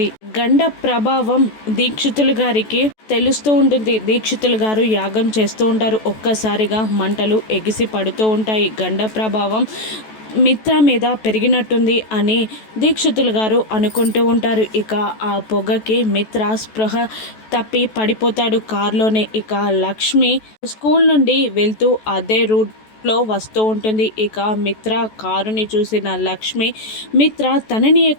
గండ ప్రభావం దీక్షితులు గారికి తెలుస్తూ ఉంటుంది. దీక్షితులు గారు యాగం చేస్తూ ఉంటారు. ఒక్కసారిగా మంటలు ఎగిసి పడుతూ ఉంటాయి. గండ ప్రభావం మిత్ర మీద పెరిగినట్టుంది అని దీక్షితులు గారు అనుకుంటూ ఉంటారు. ఇక ఆ పొగకి మిత్ర స్పృహ తప్పి పడిపోతాడు కారులోనే. ఇక లక్ష్మి స్కూల్ నుండి వెళ్తూ అదే రూట్లో వస్తూ ఉంటుంది. ఇక మిత్ర కారుని చూసిన లక్ష్మి మిత్ర తనని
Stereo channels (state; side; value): late; right; 14 ms